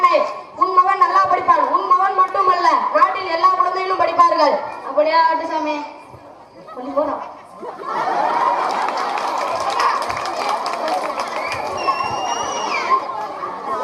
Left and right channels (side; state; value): both; identical; correlation 1.00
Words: உன் மகன் நல்லா படிப்பான். உன் மகன் மட்டுமல்ல, நாட்டில் எல்லா குழந்தைகளும் படிப்பார்கள். அப்படியா ஆட்டு சாமி? கொஞ்சம் போறோம்.